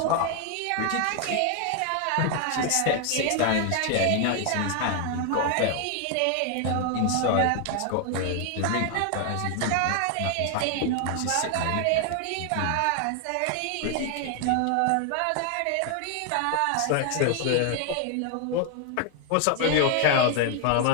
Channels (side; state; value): both; different; correlation 0.00